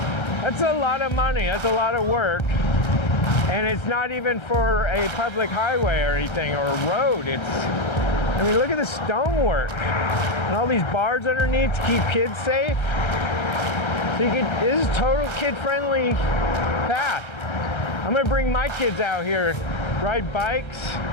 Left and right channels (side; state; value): right; late; 1.3 ms